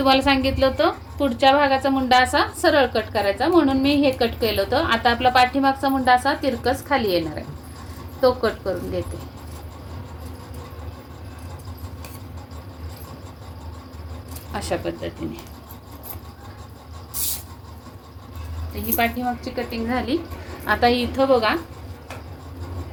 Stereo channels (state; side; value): identical; both; correlation 1.00